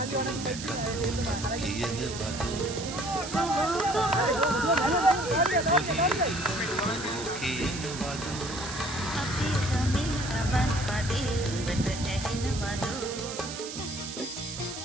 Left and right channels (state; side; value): noise; right; hiss, 9 dB below the sound